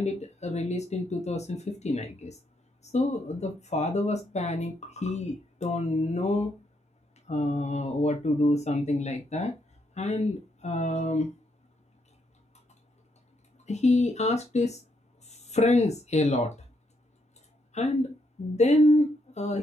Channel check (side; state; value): both; normal; correlation 0.76